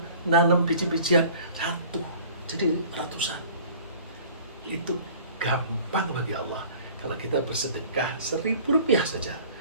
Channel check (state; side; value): inverted; both; correlation -0.47